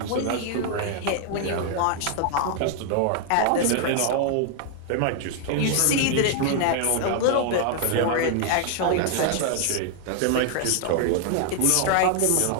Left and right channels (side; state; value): both; different; correlation 0.00